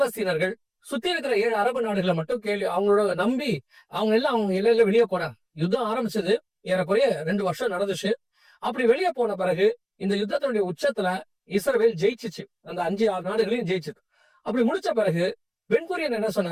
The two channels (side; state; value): both; identical; correlation 1.00